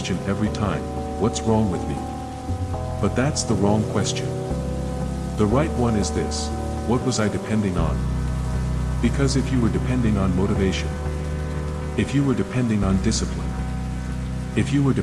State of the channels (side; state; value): both; identical; correlation 1.00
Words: every time, what's wrong with me? But that's the wrong question. The right one is this, what was I depending on? Because if you were depending on motivation, if you were depending on discipline, if you were